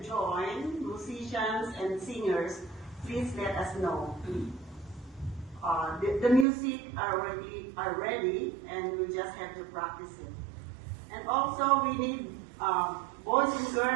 join, musicians and singers, please let us know. The music are ready, and we just have to practice it. And also, we need boys and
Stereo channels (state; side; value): drops out; left; at 6.5 s